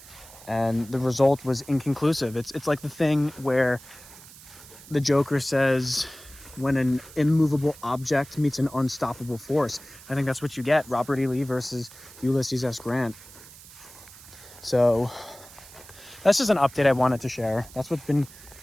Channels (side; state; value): right; noise; hiss, 19 dB below the sound